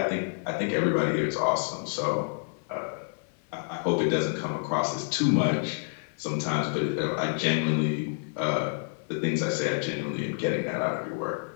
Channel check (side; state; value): right; silent; digital silence